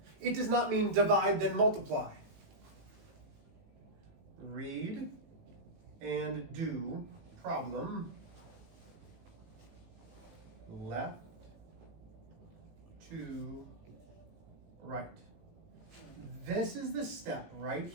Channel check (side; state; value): left; late; 18 ms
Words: It does not mean divide then multiply. Read and do problem left to right. This is the step right